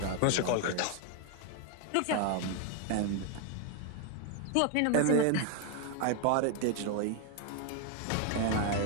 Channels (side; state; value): both; different; correlation 0.01